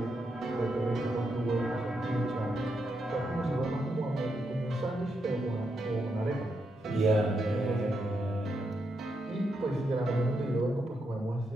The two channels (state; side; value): normal; both; correlation 0.82